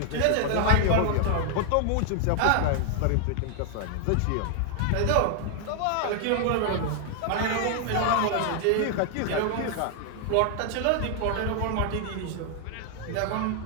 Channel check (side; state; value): both; different; correlation 0.00